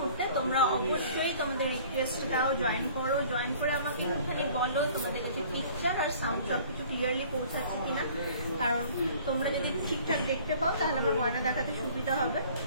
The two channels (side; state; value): both; inverted; correlation -0.51